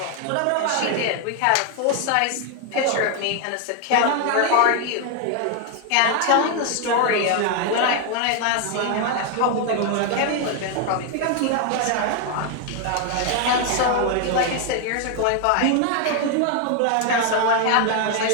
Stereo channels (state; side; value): different; both; correlation 0.00